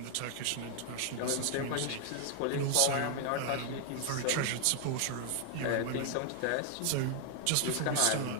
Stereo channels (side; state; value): both; different; correlation 0.00